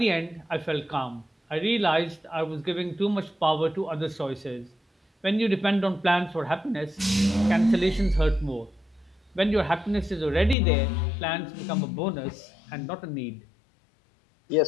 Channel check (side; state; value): right; drops out; at 10.6 s